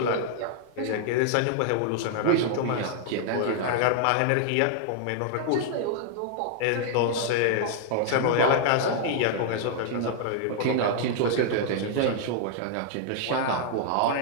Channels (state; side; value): different; both; correlation -0.01